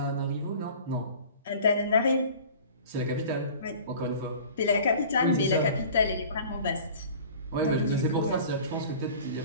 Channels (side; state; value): both; inverted; correlation -0.44